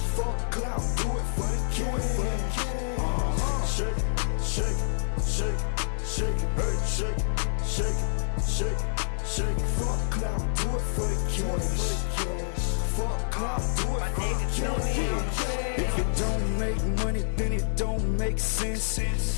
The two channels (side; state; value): right; silent; 56 dB below the other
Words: Fuck clout, do it for the cash. Shake it, shake it, shake it, shake it, hey, shake it, shake it, shake it, shake it. Fuck clout, do it for the cash. Fuck clout, do it for the cash. If it don't make money, then it don't make sense.